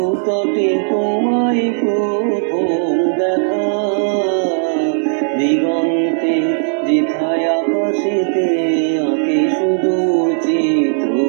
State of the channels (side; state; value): left; silent; digital silence